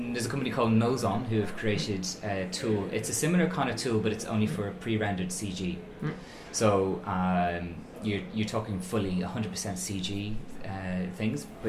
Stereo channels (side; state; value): both; identical; correlation 1.00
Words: There's a company called Nozon who have created a tool. It's a similar kind of tool, but it's only for pre-rendered CG. So you're talking fully 100% CG things,